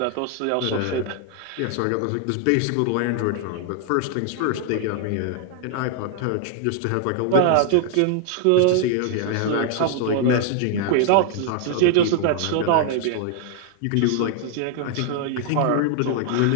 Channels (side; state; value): both; different; correlation 0.00